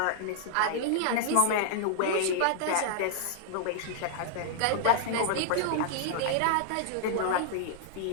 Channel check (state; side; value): different; both; correlation -0.01